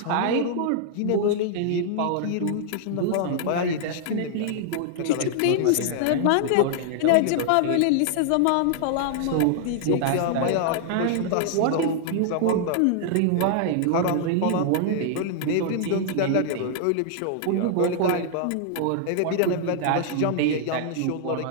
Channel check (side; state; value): both; different; correlation -0.01